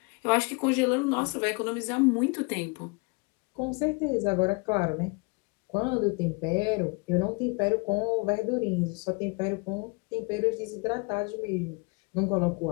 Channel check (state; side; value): quieter; right; 30.7 dB